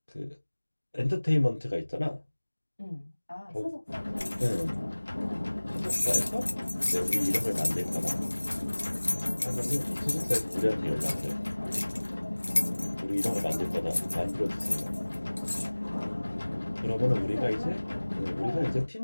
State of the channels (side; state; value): both; inverted; correlation -1.00